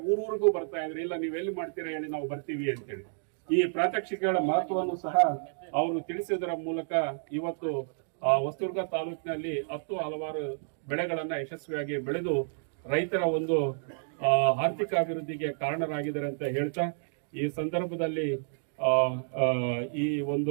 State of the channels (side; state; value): left; silent; digital silence